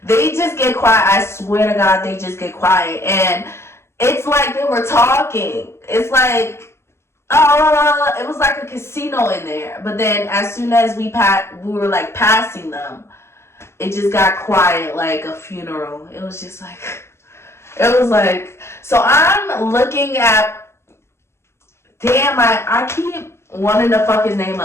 They just get quiet. I swear to God, they just get quiet. And it's like they were talking. It's like, it was like a casino in there. But then as soon as we were like passing them, it just got quiet like a funeral. It was just like, so I'm looking at, damn, I keep wanting to fuck his name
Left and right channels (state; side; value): late; right; 0.13 ms